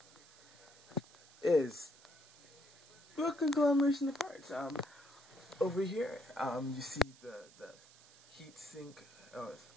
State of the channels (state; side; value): noise; right; hiss, 23 dB below the sound